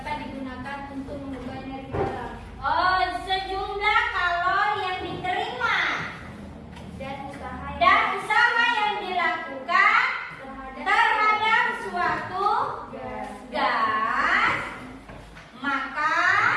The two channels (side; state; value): both; identical; correlation 1.00